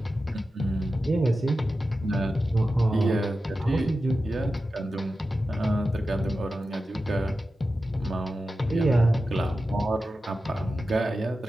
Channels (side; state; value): both; normal; correlation 0.92